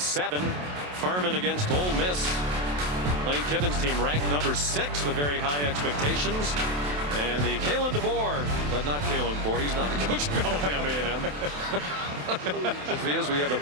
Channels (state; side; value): late; left; 27 ms